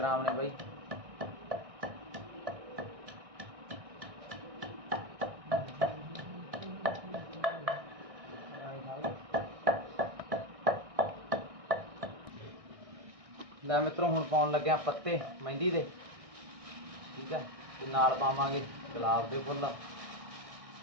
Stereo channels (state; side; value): late; left; 1.6 ms